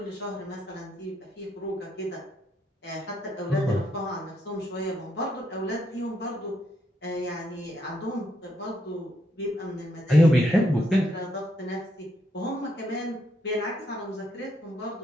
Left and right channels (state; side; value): normal; both; correlation 0.76